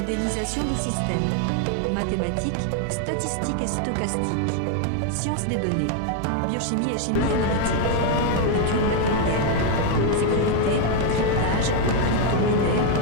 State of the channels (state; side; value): different; both; correlation 0.01